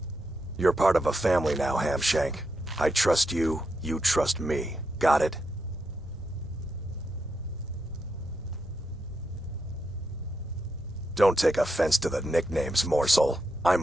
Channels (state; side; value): normal; both; correlation 0.84